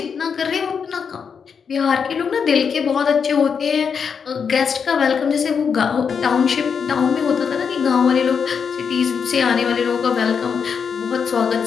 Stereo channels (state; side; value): quieter; right; 6.4 dB